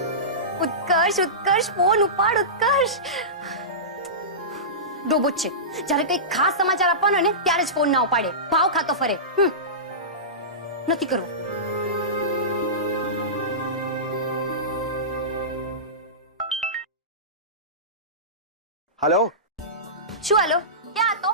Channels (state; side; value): normal; both; correlation -0.20